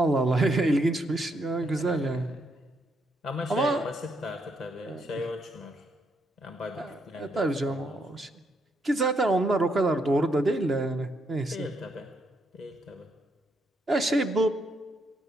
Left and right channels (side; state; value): both; normal; correlation 0.76